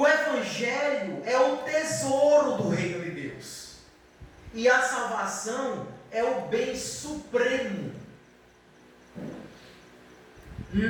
Evangelho é o tesouro do reino de Deus. E a salvação é o bem supremo.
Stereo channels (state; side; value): identical; both; correlation 1.00